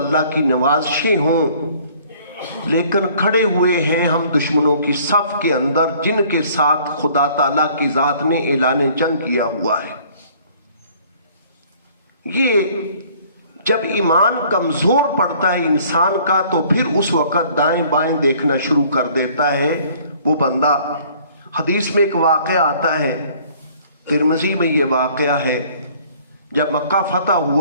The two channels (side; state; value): both; inverted; correlation -0.56